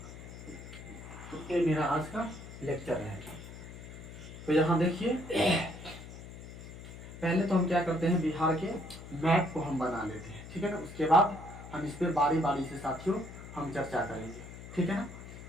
तो ये मेरा आज का लेक्चर रहेगा। तो यहाँ देखिए, पहले तो हम क्या करते हैं, बिहार के मैप को हम बना लेते हैं, ठीक है ना। उसके बाद हम इस पे बारी बारी से साथियों हम चर्चा करेंगे, ठीक है ना।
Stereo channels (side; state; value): left; noise; hum, 13 dB below the sound